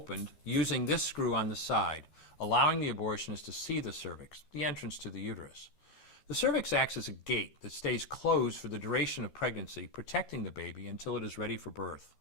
using this screw on the side, allowing the abortionist to see the cervix, the entrance to the uterus. The cervix acts as a gate that stays closed for the duration of pregnancy, protecting the baby until it is ready for birth.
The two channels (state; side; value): late; right; 13 ms